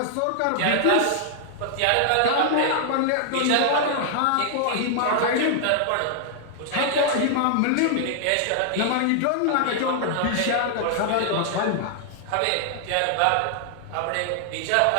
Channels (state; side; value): different; both; correlation 0.00